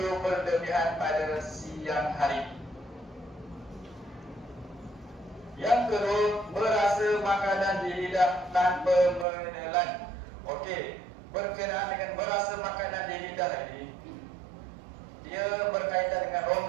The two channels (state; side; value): drops out; left; at 9.2 s